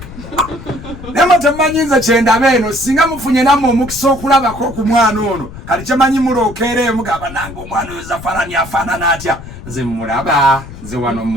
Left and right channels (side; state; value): left; noise; rumble, 14 dB below the sound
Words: nema temanyiza kyendaba eno singa mufunye nammwe omukisa okulabako ku mwana ono kati kyemanyi mulookeera mugamba nange omwana oyo zafarani afaanana atya nze mulaba nze wano